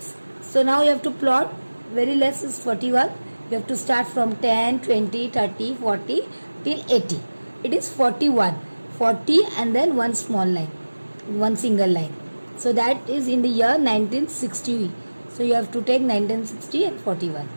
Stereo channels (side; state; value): both; inverted; correlation -1.00